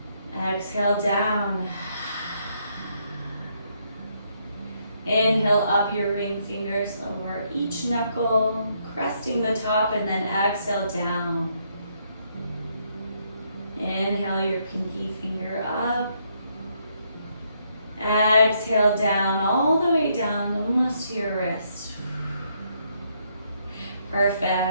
Exhale down. Inhale up your ring fingers over each knuckle, cresting the top, and then exhale down. Inhale your pinky finger up. Exhale down, all the way down, almost to your wrist.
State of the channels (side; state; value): both; inverted; correlation -0.74